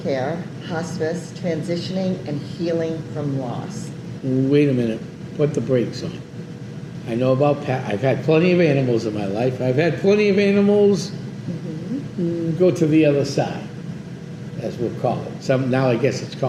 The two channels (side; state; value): both; identical; correlation 1.00